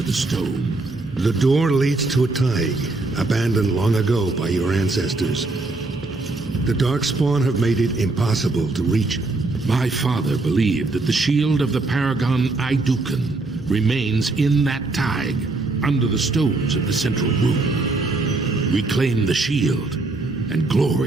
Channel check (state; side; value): quieter; left; 3.3 dB